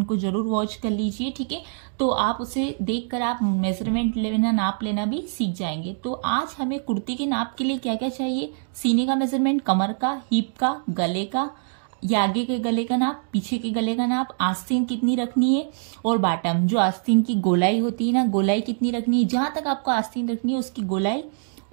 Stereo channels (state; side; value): silent; left; digital silence